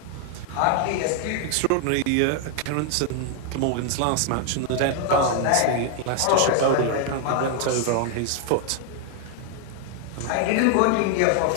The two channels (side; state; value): both; different; correlation 0.00